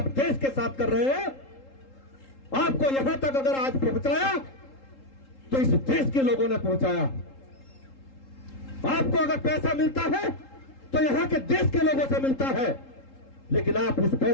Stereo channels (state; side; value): late; right; 3.8 ms